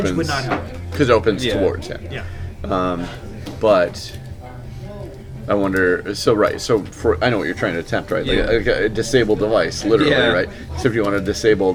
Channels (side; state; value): both; identical; correlation 1.00